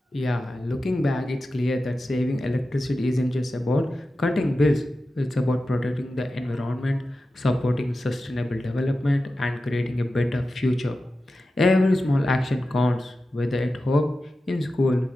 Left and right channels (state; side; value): normal; both; correlation 0.93